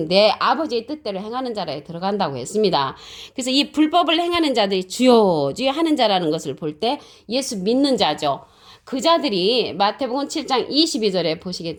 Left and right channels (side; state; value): both; identical; correlation 1.00